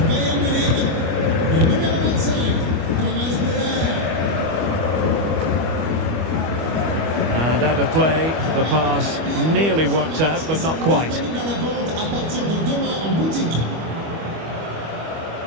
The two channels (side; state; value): left; late; 25 ms